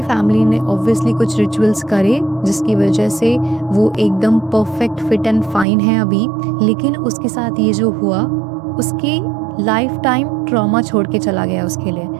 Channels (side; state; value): left; drops out; at 5.7 s